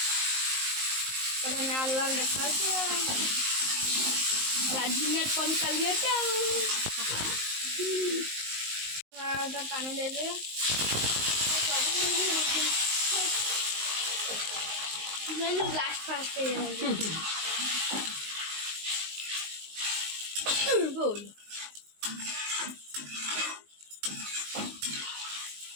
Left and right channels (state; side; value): late; left; 19 ms